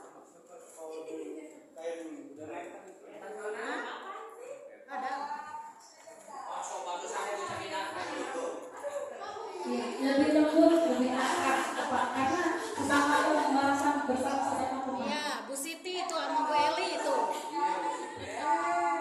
Ada. Ya, lebih lembut, lebih akrab, Pak. Karena sesama merasa bersama-sama teman. Iya, Bu Siti itu sama Bu Eli itu.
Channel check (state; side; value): identical; both; correlation 1.00